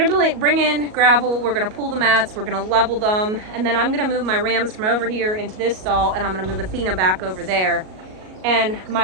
bring in gravel. We're gonna pull the mats. We're gonna level them, and then I'm gonna move my rams from over here into this stall, and I'm gonna move Athena back over there. And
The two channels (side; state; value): left; late; 38 ms